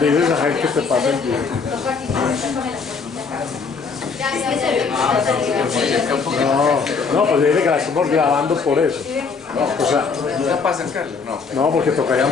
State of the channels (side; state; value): right; quieter; 5.1 dB